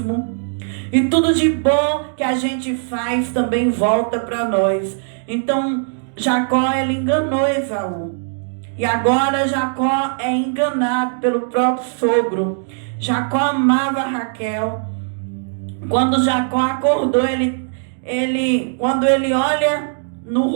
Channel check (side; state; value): left; silent; digital silence